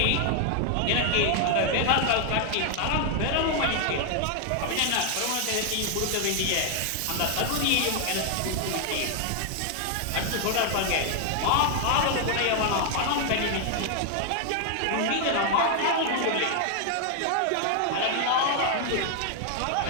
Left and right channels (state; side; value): different; both; correlation 0.00